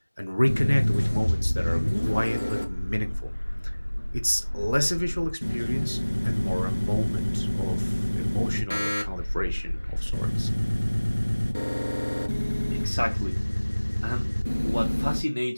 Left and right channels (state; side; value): inverted; both; correlation -1.00